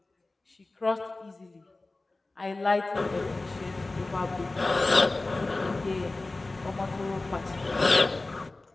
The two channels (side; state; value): right; quieter; 3.1 dB